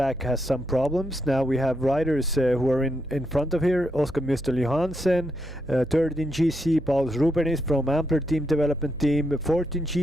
has some problems. Now we have riders who are in front of here. Oscar Müstel Johansen, third in GC. Paulus Rubenis from Ampler Team Development Team, fourth in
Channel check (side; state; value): right; noise; hum, 16 dB below the sound